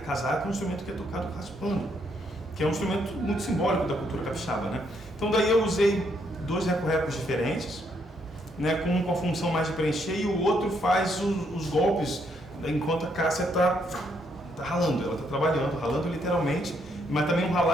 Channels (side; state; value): both; normal; correlation 0.73